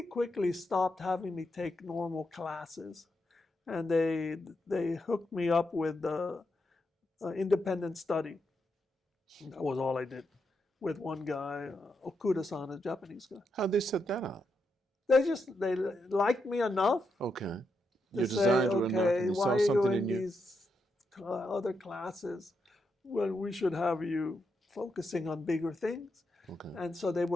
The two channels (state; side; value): normal; both; correlation 0.83